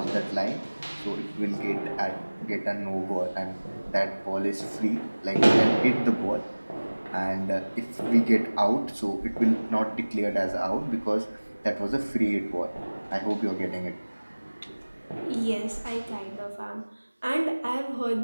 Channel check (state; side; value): inverted; both; correlation -1.00